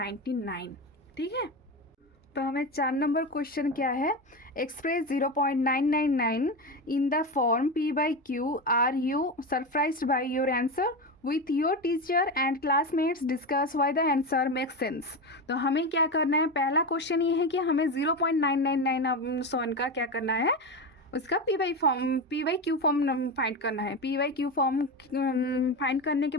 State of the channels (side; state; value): both; normal; correlation 0.19